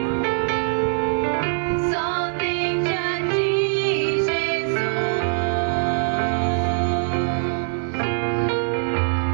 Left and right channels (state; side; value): silent; left; digital silence